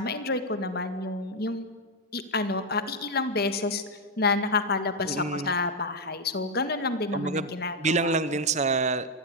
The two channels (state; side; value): normal; both; correlation 0.02